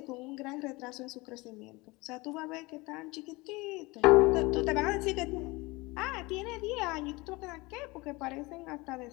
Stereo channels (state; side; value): quieter; right; 23.5 dB